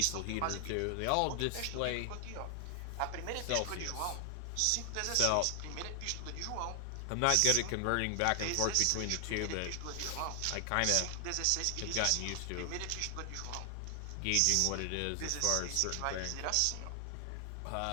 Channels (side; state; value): both; different; correlation 0.00